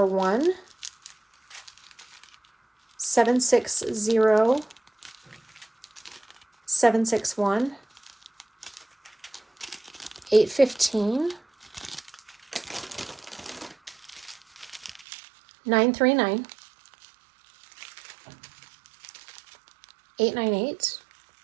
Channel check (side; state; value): left; drops out; at 15.1 s